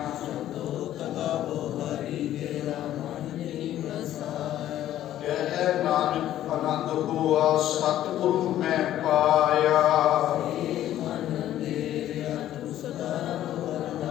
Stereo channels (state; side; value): quieter; right; 12.5 dB